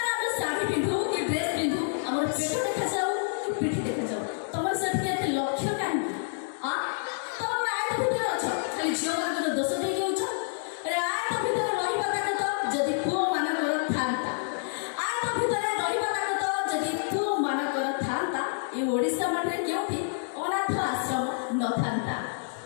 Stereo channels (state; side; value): silent; right; digital silence